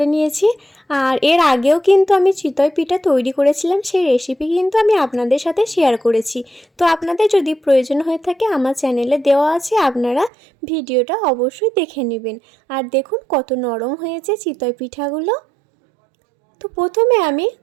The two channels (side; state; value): left; drops out; at 10.3 s